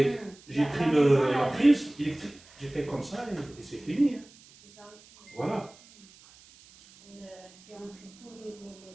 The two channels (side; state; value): right; noise; hiss, 24 dB below the sound